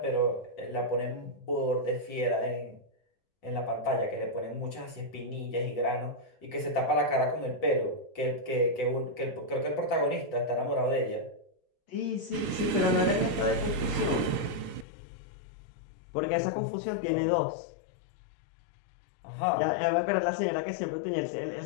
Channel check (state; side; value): drops out; right; at 14.9 s